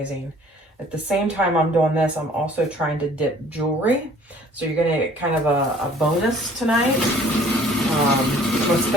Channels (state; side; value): normal; both; correlation 0.54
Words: At the same time I'm doing this, I'm also trying to dip jewelry. So you're going to get kind of a bonus tonight. I'm going to